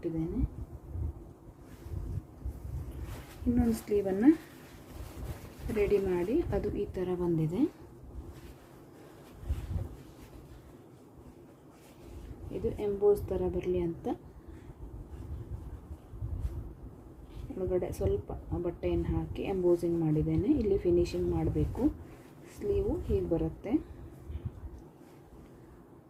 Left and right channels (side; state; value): both; identical; correlation 1.00